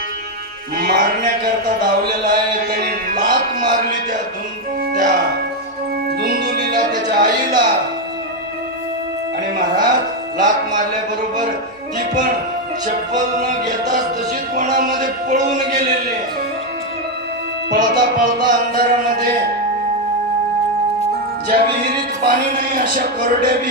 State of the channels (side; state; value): both; normal; correlation 0.05